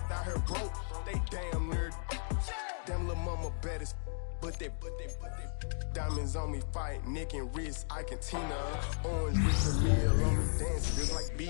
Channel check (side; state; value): right; silent; digital silence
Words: out here broke, they damn nerd. Damn little mama better, but they diamonds on me fight, neck and wrist, I can Tina. Orange with the meal on me dance just like